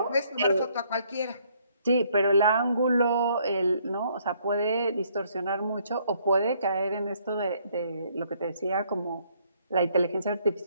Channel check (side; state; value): both; inverted; correlation -0.67